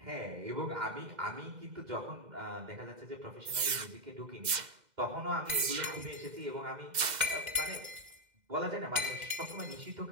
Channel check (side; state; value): left; late; 2.0 ms